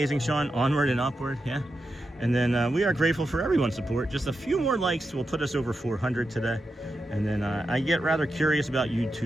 Sean. Onward and upward, yeah. And then we are grateful for everyone's support. Just a few more likes will put us over 400 today. And then I get rather curious about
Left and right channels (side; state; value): both; normal; correlation 0.88